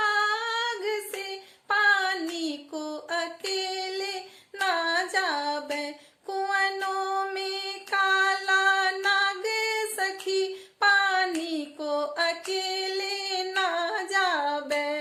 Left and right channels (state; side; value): identical; both; correlation 1.00